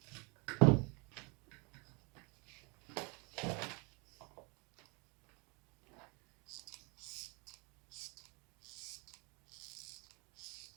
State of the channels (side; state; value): left; quieter; 30.9 dB